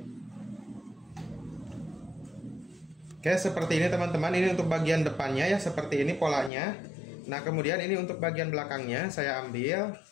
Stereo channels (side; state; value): right; drops out; at 6.5 s